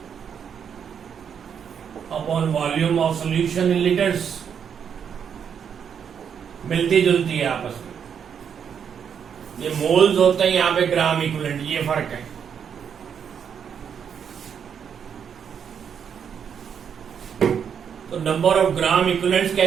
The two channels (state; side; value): quieter; left; 7.6 dB